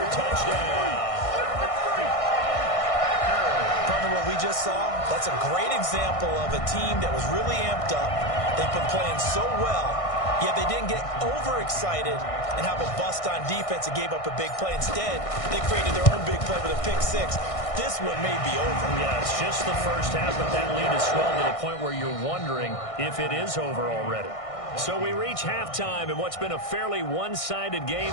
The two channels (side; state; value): right; late; 1.6 ms